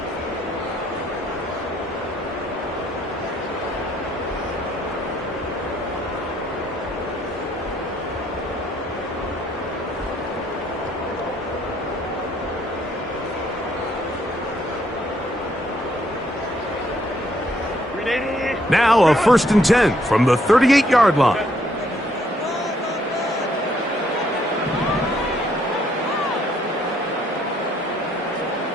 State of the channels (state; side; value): normal; both; correlation 0.69